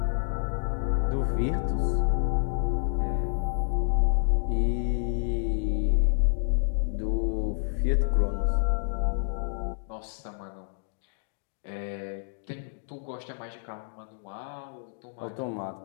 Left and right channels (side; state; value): right; silent; digital silence